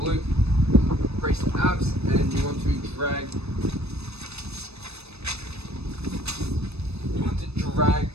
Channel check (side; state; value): left; late; 0.79 ms